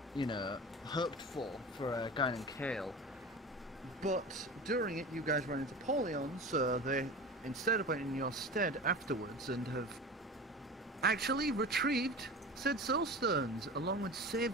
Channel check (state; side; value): normal; both; correlation 0.33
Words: hoped for a guy named Kale. But during it, you guys ran into Polion, so they instead went in your stead afterwards and have actually retrieved said soul stones, along with